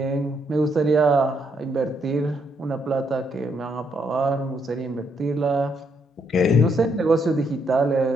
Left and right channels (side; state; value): both; normal; correlation 0.75